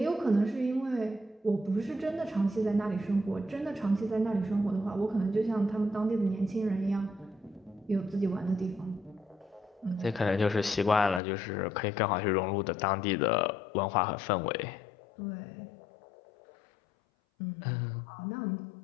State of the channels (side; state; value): right; drops out; at 11.2 s